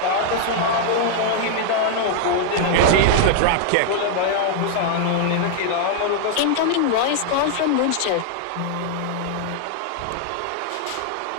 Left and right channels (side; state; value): both; different; correlation 0.00